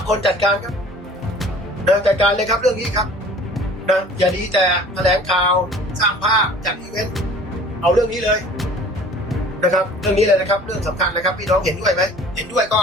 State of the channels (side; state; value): both; normal; correlation 0.47